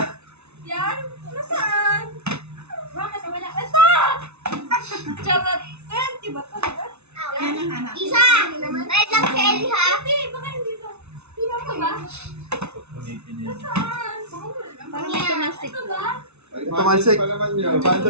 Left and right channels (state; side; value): late; left; 0.81 ms